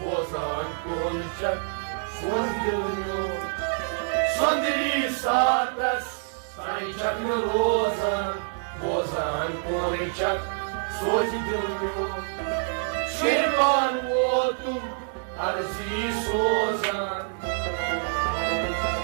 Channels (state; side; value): silent; left; digital silence